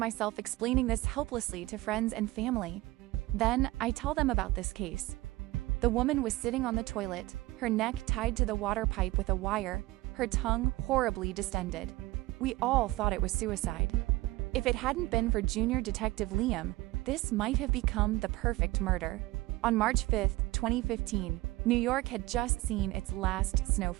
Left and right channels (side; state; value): left; quieter; 19.0 dB